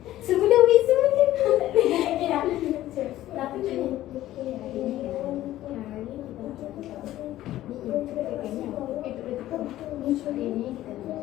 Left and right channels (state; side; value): quieter; right; 14.4 dB